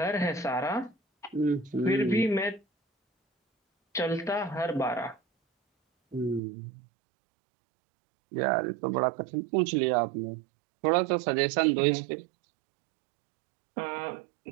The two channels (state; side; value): drops out; left; at 6.4 s